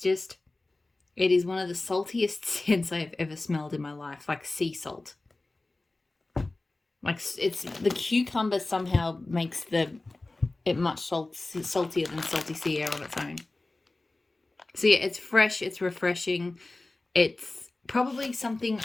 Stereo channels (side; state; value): right; quieter; 3.0 dB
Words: is one of the saltiest scents I've ever smelled in my life, like sea salt. Like it's the cucumber somehow makes it much saltier than salty sea air on its own. So yeah, it's fresh, it's refreshing, it's probably something